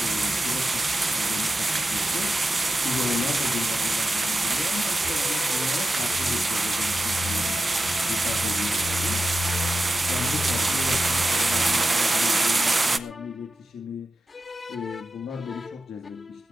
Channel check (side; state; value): both; normal; correlation 0.91